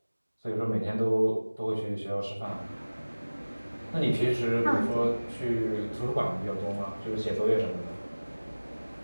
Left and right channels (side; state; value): both; inverted; correlation -1.00